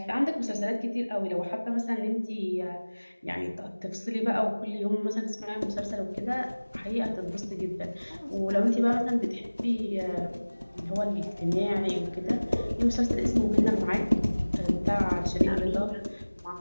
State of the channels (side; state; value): both; inverted; correlation -1.00